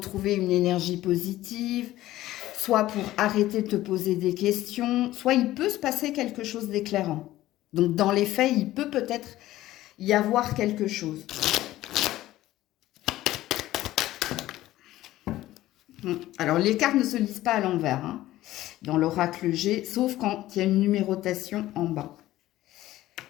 une énergie positive, soit pour arrêter de te poser des questions, soit il peut se passer quelque chose d'éclairant. Donc, dans les faits, il peut peut-être y avoir quelque chose. Alors, les cartes ne se lisent pas à l'envers, hein, dans l'oracle G, sauf quand il y a une numérotation en bas.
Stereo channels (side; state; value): right; quieter; 15.4 dB